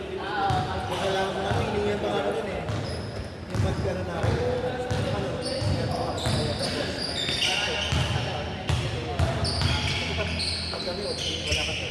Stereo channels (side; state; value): both; identical; correlation 1.00